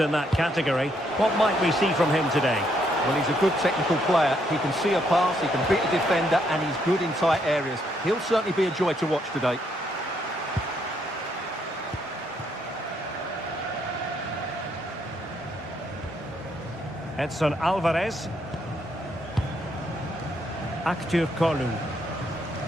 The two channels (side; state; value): both; normal; correlation 0.73